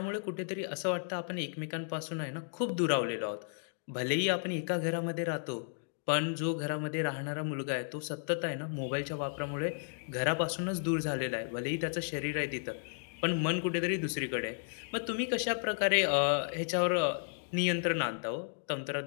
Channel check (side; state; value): right; silent; digital silence